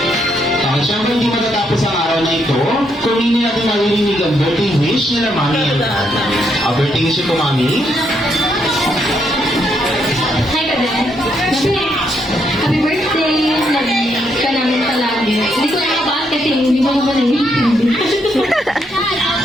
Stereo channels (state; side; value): normal; both; correlation 0.76